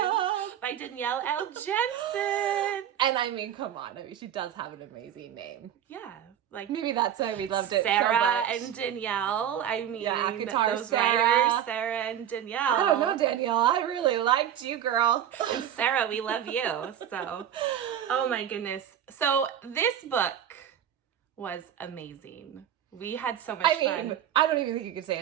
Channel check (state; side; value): quieter; left; 10.1 dB